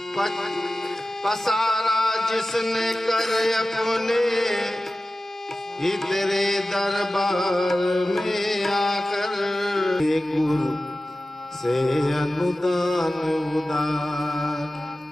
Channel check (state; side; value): normal; both; correlation 0.95